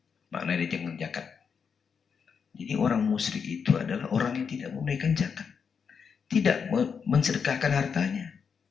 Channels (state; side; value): quieter; right; 6.3 dB